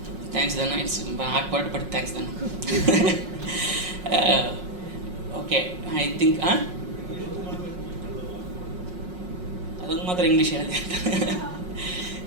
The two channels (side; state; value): left; late; 5.5 ms